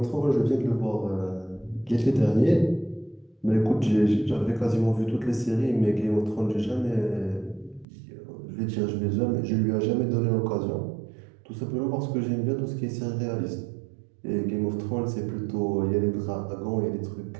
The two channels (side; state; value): left; drops out; at 7.9 s